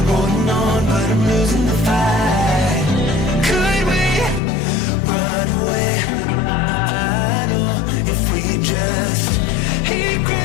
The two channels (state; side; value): drops out; right; at 4.4 s